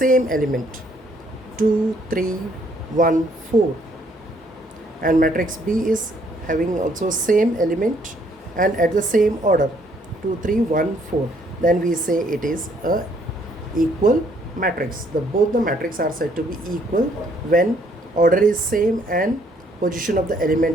element 2 3 1 4 and matrix B is having also same element and at the same order 2 3 1 4, then we say it is a equal matrix. Both the matrix are said to be equal when order is same and position of the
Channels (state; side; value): normal; both; correlation 0.66